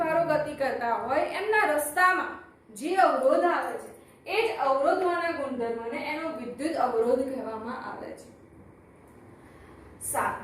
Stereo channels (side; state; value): both; identical; correlation 1.00